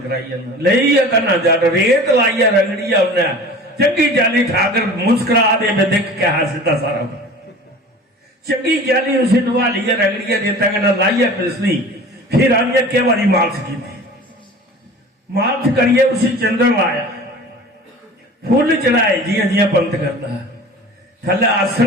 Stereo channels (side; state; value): both; normal; correlation 0.40